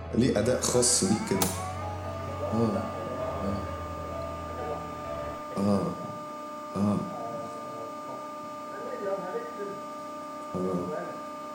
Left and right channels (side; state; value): both; identical; correlation 1.00